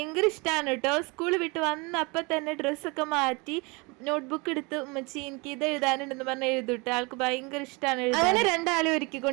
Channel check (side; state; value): left; quieter; 27.8 dB